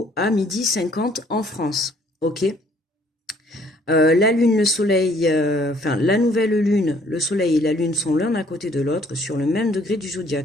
à 12h50 en France. Ok. La lune, le soleil, enfin la nouvelle lune, le soleil et la lune sont l'un à côté de l'autre sur le même degré du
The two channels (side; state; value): both; normal; correlation 0.61